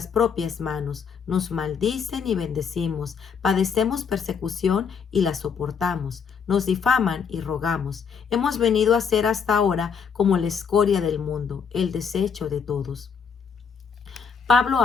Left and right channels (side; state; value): right; quieter; 6.4 dB